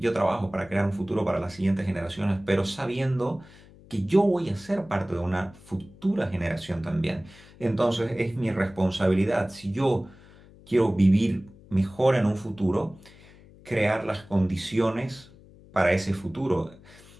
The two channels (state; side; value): noise; left; hum, 23 dB below the sound